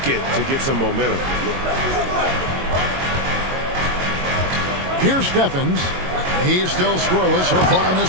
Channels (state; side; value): late; left; 22 ms